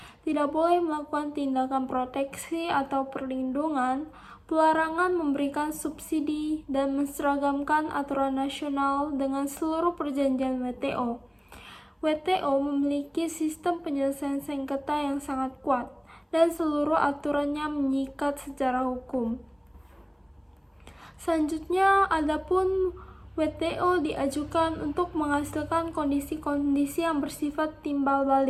Tidak boleh melakukan tindakan proteksi atau perlindungan, pelarangan memberikan subsidi, dan menseragamkan aturan nasional dengan seluruh perjanjian WTO. WTO memiliki sistem penyelesaian sengketa yang sangat kuat, dan seluruh aturannya mengikat secara hukum. Selanjutnya, adapun WTO diajukan untuk menghasilkan kondisi-kondisi yang bersifat timbal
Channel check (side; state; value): both; identical; correlation 1.00